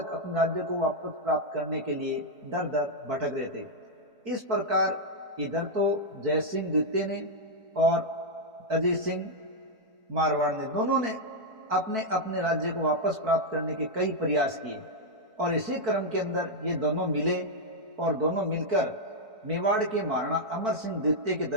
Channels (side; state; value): left; late; 4.5 ms